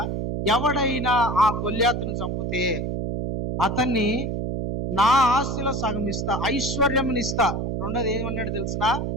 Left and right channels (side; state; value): right; noise; hum, 2 dB below the sound